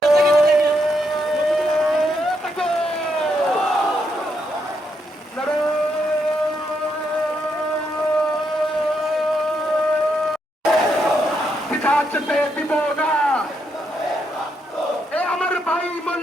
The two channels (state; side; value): normal; both; correlation 0.79